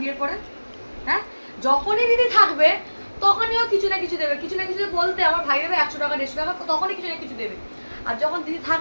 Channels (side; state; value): both; inverted; correlation -1.00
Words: বিয়ের পরে। হ্যাঁ, যখনই দিদি থাকবে তখনই ও কিছু না কিছু দেবে, কিছু না কিছু বলতে আমার ভাই দেবে 100 টাকা 150 টাকা, তখনই কিছু না কিছু দেবে। আর যখন দিদি